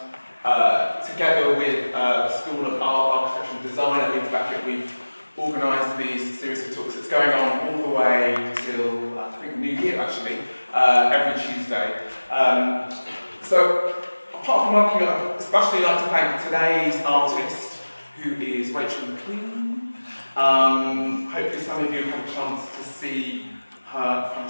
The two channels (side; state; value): both; inverted; correlation -1.00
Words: together with the School of Art, Architecture and Design at Leeds Beckett. We've organised these series of talks. It's going on all the way till, I think, New Year actually, every Tuesday. So, apart from working, I'd especially like to thank today's artist, who is Rachel Maclean. Hopefully some of you have had a chance to see her